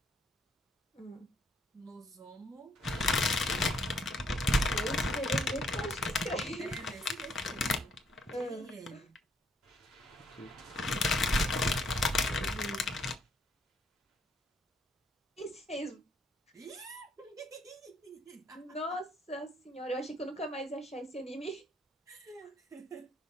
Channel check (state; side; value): normal; both; correlation 0.69